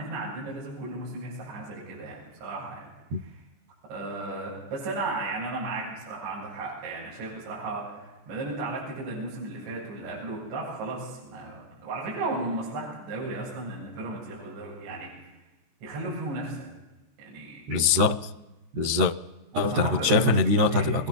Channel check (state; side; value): late; left; 13 ms